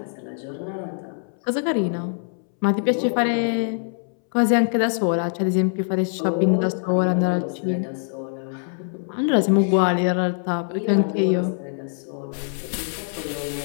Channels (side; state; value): right; silent; 63 dB below the other